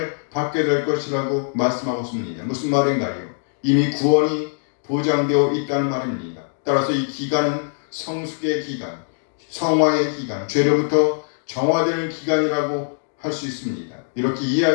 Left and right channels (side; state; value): right; silent; digital silence